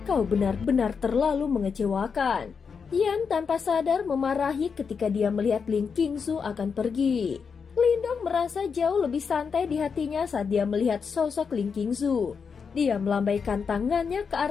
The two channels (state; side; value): quieter; right; 5.9 dB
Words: Kau benar-benar terlalu mengecewakan. Yan tanpa sadar memarahi ketika dia melihat Ling Qingzu akan pergi. Lindong merasa jauh lebih santai di hatinya saat dia melihat sosok Ling Qingzu. Dia melambaikan tangannya ke